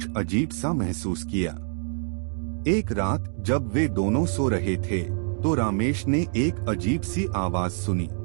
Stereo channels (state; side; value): silent; left; digital silence